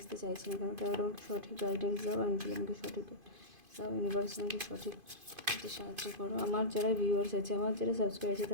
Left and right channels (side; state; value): left; late; 2.5 ms